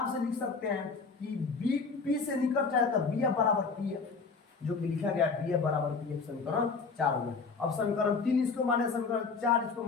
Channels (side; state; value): right; quieter; 4.7 dB